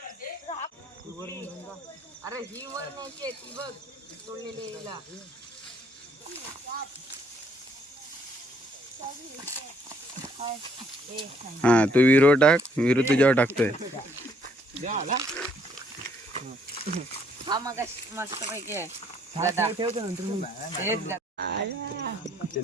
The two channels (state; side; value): normal; both; correlation 0.66